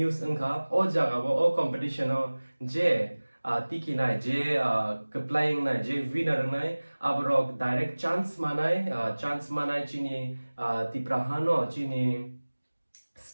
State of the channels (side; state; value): both; inverted; correlation -1.00